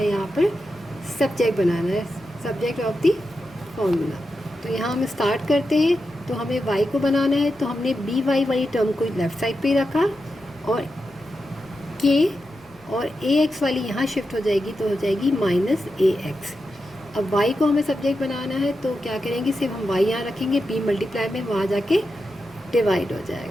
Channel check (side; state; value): left; noise; rumble, 28 dB below the sound